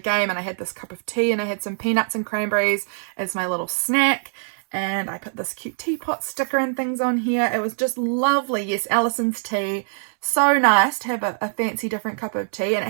and I had this cup of tea, and I had some peanuts and cranberries as my little snack, and I put this cute teapot sticker and things on here. It was just lovely. Yes, Alison's tea. So nice to have a fancy different cup of tea, and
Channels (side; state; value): left; silent; 63 dB below the other